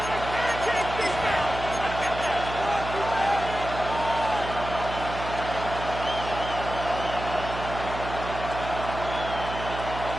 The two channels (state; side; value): noise; right; hum, 8 dB below the sound